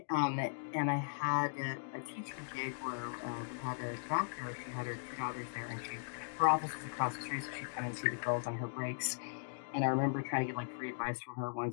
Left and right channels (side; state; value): right; silent; digital silence